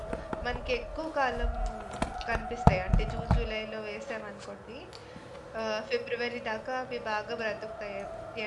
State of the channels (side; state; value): both; identical; correlation 1.00